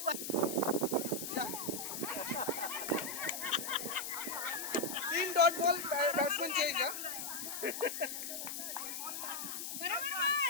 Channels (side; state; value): left; noise; hiss, 5 dB below the sound